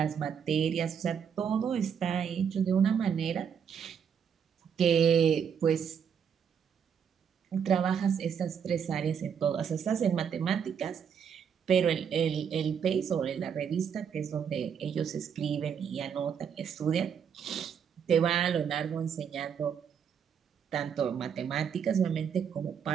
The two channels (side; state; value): left; quieter; 7.5 dB